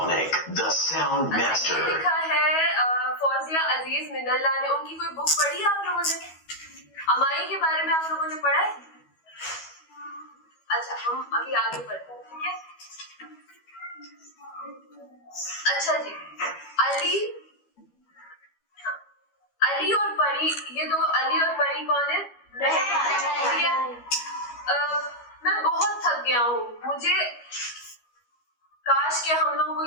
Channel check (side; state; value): right; late; 12 ms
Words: the sound master. ये लिखा है फौजिया अजीज मिनल्ला ने, उनकी कोई बुक पढ़ी है आप लोगों ने? अमाई के बारे में आप लोगों ने पढ़ा है? अच्छा हम अभी आगे पढ़ते हैं, ठीक है। अच्छा जी, अली और परी, ये दो अली और परी कौन है? ठीक है। मैं बहुत थक गया हूँ, मुझे काश के हम लोगों को